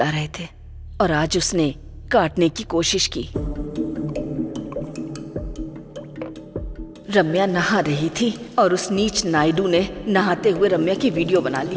रहे थे और आज उसने काटने की कोशिश की। रम्या नहा रही थी और उस नीच नायडू ने नहाते हुए रम्या की वीडियो बना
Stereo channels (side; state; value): both; identical; correlation 1.00